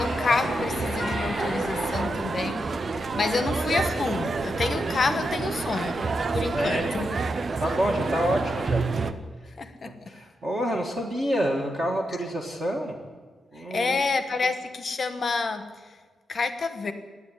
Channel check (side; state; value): both; normal; correlation 0.85